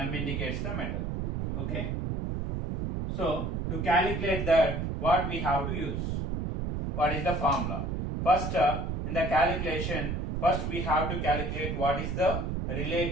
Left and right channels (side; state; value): right; noise; rumble, 2 dB below the sound